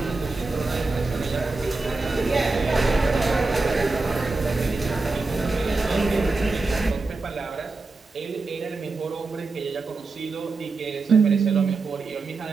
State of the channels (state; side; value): quieter; left; 3.7 dB